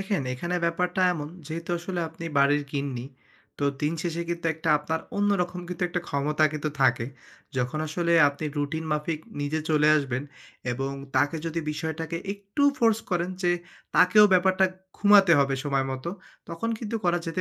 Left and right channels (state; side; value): identical; both; correlation 1.00